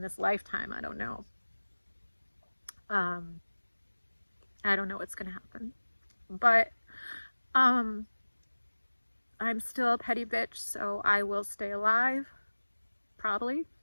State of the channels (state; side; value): inverted; both; correlation -1.00